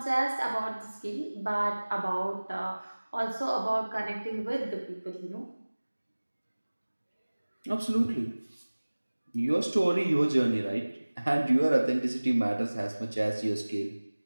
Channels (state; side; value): inverted; both; correlation -1.00